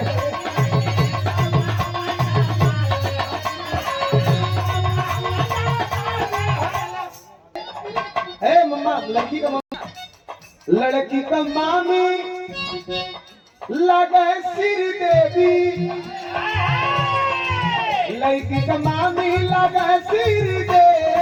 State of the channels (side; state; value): both; identical; correlation 1.00